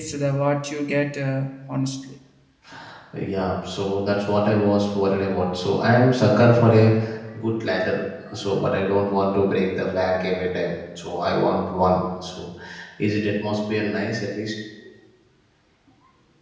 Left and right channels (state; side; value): identical; both; correlation 1.00